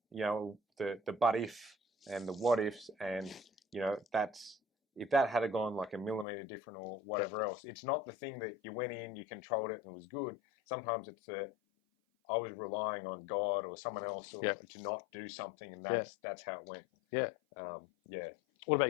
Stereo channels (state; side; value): drops out; right; at 6.2 s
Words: know, the but if and the what ifs, and you know, if that had gone like a millimeter different or whatever else, it's not the thing that you went in, you controlled it and it was good. Sometimes it's I was relying on God or someone else to not do something, and that's how it went. What about